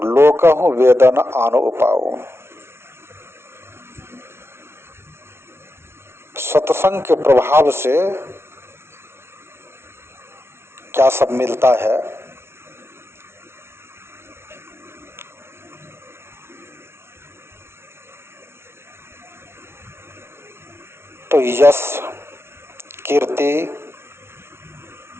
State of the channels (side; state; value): left; late; 0.12 ms